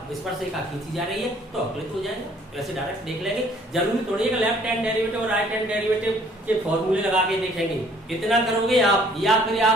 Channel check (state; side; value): normal; both; correlation 0.59